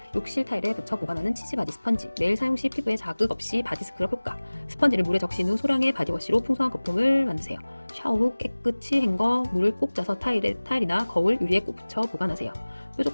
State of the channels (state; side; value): inverted; both; correlation -1.00